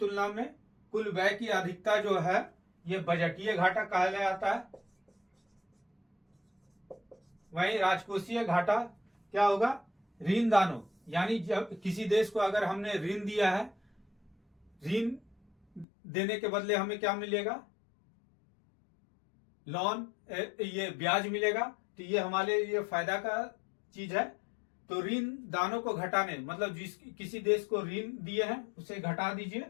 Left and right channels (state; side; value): drops out; right; at 15.9 s